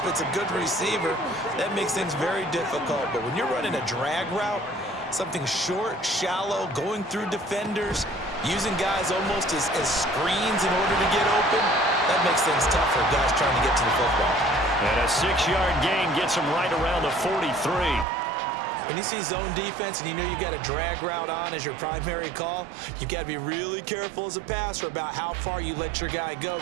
it's a good receiver. That makes things very difficult. But when you're running a drag route, something short, shallow, going through defenders, using guys almost as screens in order to get open, that makes things tough for guys trying to get to the football. And a 6-yard gain gets him right around the 43. When you see zone defense and you know you've got a drag route on as your primary call, you've got to be really careful as a passer about how far you let your guy go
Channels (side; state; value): left; drops out; at 18.1 s